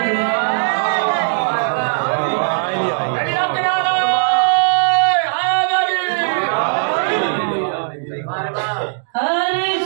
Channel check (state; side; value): silent; left; digital silence